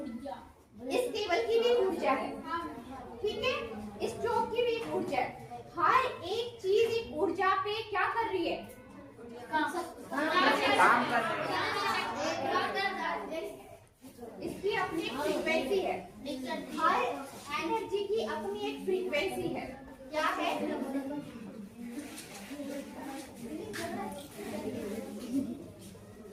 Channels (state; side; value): identical; both; correlation 1.00